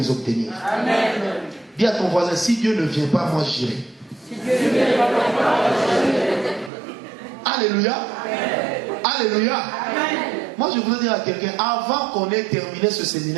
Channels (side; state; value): left; drops out; at 6.7 s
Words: obtenir. Amen. Dis à ton voisin, si Dieu ne vient pas, moi j'irai. Alléluia. Amen. Alléluia. Amen. Moi je voudrais dire à quelqu'un, avant qu'on ait terminé ce